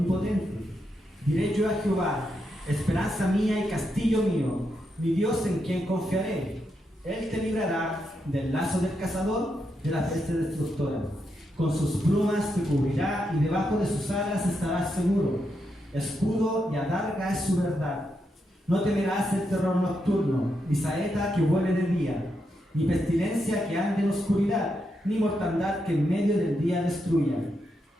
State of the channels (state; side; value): normal; both; correlation 0.83